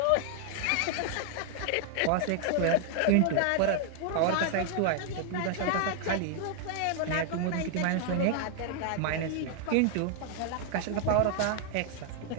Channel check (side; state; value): both; different; correlation 0.00